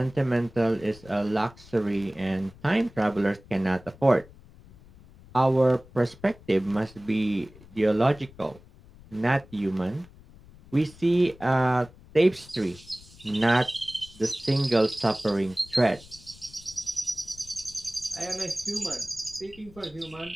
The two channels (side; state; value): left; noise; rumble, 22 dB below the sound